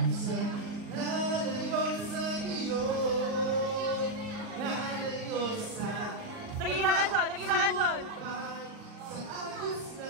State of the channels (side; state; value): left; late; 39 ms